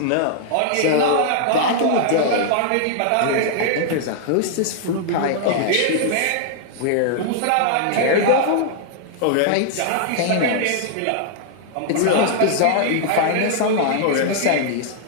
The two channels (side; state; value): both; different; correlation -0.01